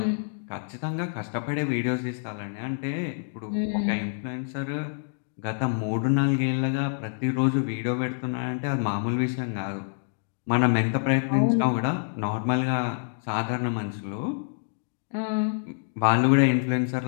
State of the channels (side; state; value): right; silent; digital silence